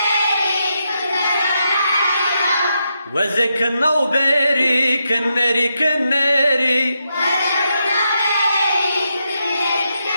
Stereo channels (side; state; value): both; inverted; correlation -0.83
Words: وزك النوبري كنري كنري